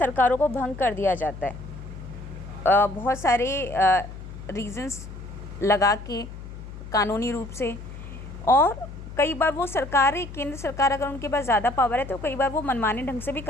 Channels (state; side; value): noise; left; hum, 12 dB below the sound